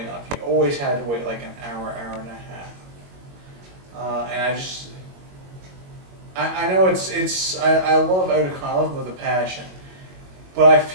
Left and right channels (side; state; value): left; late; 22 ms